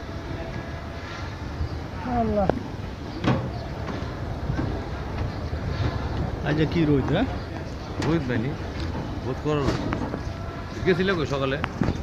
আল্লাহ, আজ কি রোদ? হ্যাঁ, রোহিত ভাইনি বোধ করো গেছিল কই সকালে?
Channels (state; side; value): identical; both; correlation 1.00